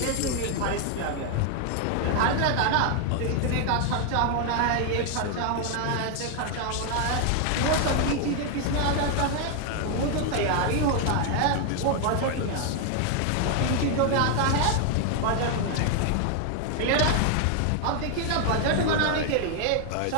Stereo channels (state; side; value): different; both; correlation 0.00